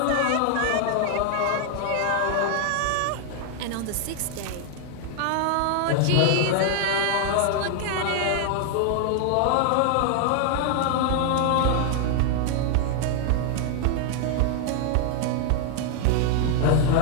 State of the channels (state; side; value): different; both; correlation 0.00